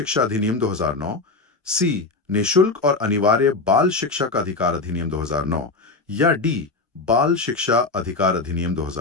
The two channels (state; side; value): quieter; right; 3.7 dB